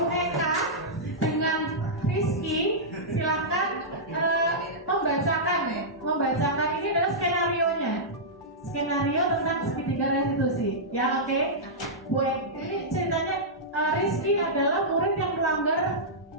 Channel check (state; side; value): normal; both; correlation -0.12